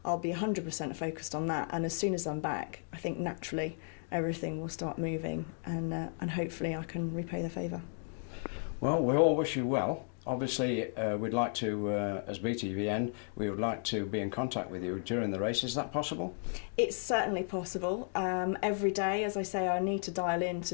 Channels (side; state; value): right; silent; 55 dB below the other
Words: I'll be 100% focused on that, and as soon as I'm back, I think naturally everything will start moving, and hopefully I can repay the favour. Well, we all wish you well. Obviously, we'd like to, as BTVN, we would like to be in contact with you during the race. Is that possible? It's certainly possible. Every day, as I say, I need to dial in